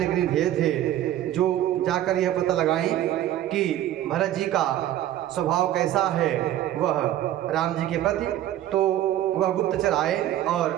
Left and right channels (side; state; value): left; quieter; 12.7 dB